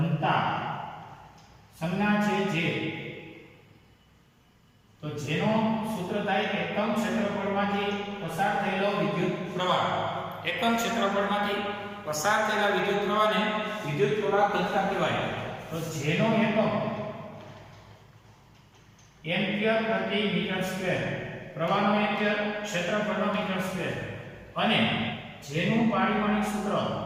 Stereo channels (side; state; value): both; identical; correlation 1.00